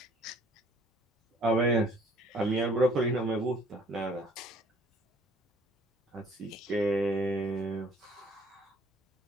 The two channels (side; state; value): both; normal; correlation 0.57